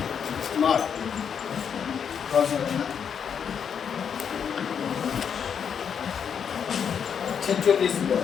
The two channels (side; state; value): right; quieter; 7.5 dB